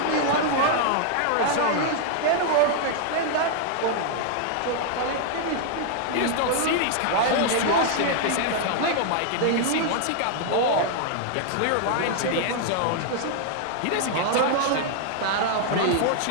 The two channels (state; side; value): different; both; correlation 0.00